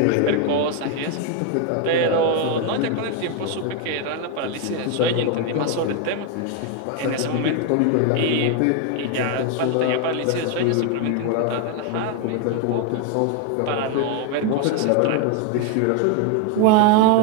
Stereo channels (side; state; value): both; different; correlation 0.01